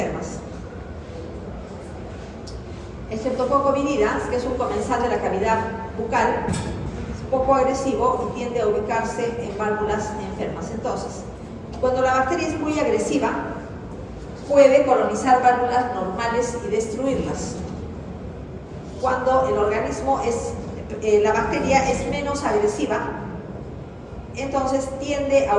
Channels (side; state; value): both; identical; correlation 1.00